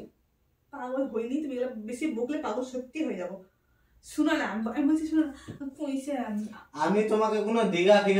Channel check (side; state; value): both; identical; correlation 1.00